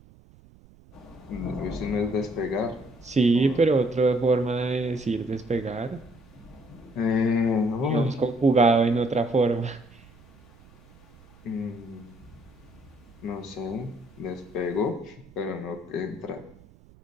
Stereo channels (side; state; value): right; noise; rumble, 26 dB below the sound